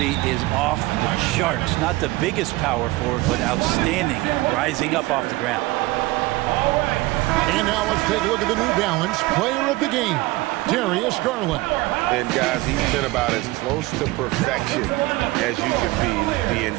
is off the charts. Not the biggest power forward, but outstanding, rising up off the ground. And now let's take a look at the New Balance player of the game, Darius Garland. And guys, he's been about as close to perfection as you can be. The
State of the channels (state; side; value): quieter; left; 20.1 dB